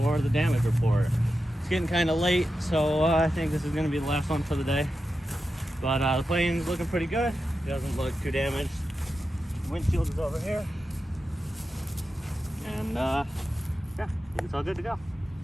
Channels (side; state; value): both; normal; correlation 0.90